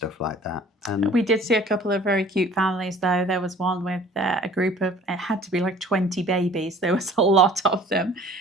like that. And we did see a couple of very cute families though. There was one with a group of, it had to be like 20 babies. There was a lot of them,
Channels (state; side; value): normal; both; correlation 0.50